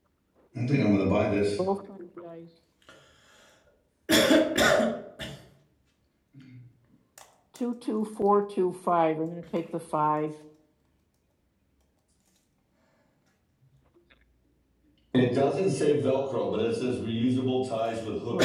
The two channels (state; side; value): identical; both; correlation 1.00